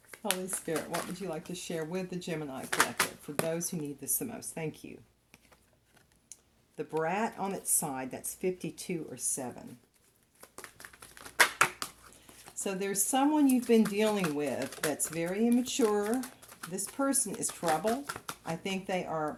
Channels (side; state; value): both; identical; correlation 1.00